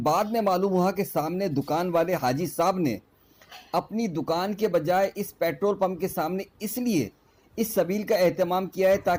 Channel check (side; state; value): both; identical; correlation 1.00